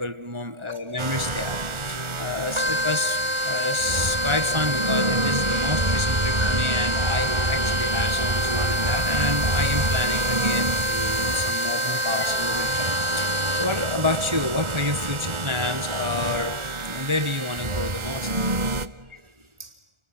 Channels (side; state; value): left; late; 1.4 ms